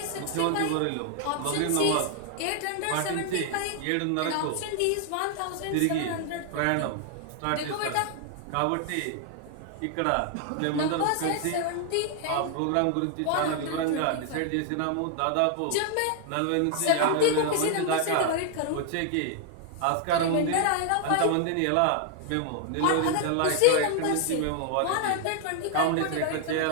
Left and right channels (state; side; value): different; both; correlation 0.00